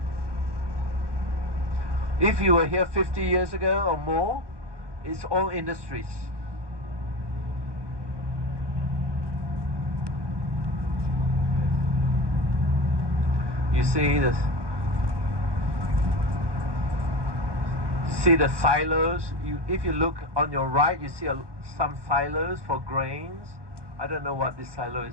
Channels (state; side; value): late; left; 1.2 ms